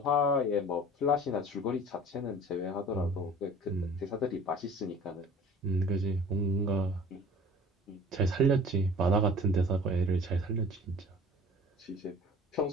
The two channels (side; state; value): both; normal; correlation 0.45